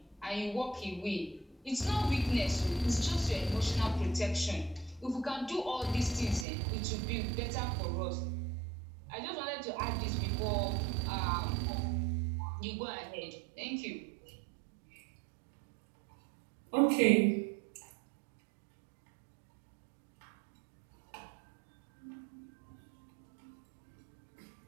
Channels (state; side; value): drops out; left; at 6.5 s